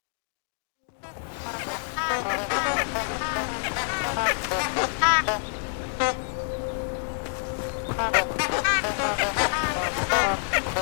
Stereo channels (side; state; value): right; silent; digital silence